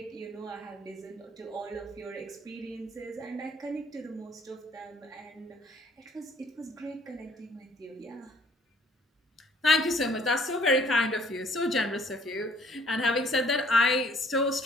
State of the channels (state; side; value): normal; both; correlation 0.59